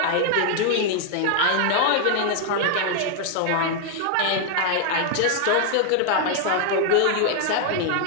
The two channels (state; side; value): different; both; correlation 0.00